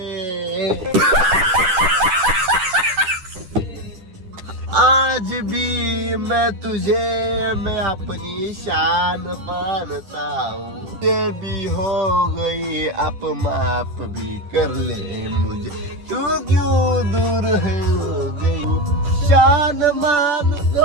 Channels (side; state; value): left; late; 10 ms